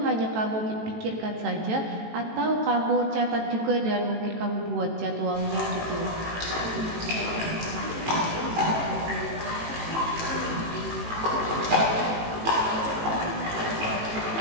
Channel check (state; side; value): late; left; 18 ms